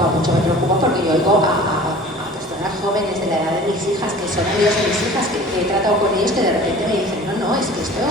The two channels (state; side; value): normal; both; correlation 0.44